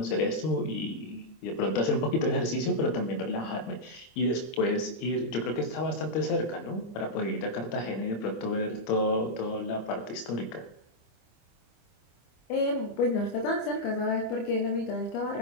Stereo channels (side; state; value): right; late; 25 ms